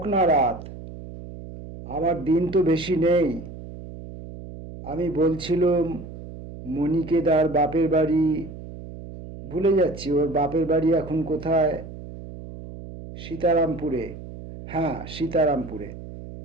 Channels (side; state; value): right; noise; hum, 13 dB below the sound